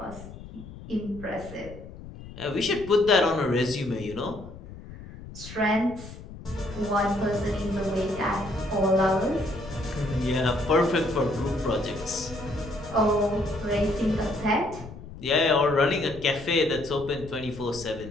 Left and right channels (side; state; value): left; noise; rumble, 15 dB below the sound